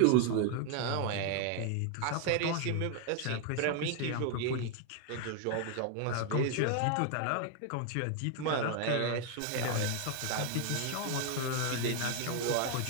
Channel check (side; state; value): both; different; correlation 0.00